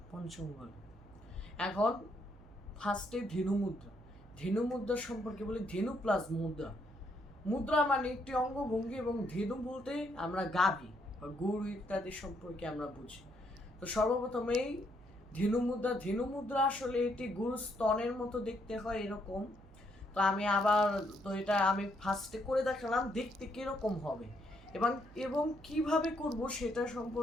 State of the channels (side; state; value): right; noise; hum, 22 dB below the sound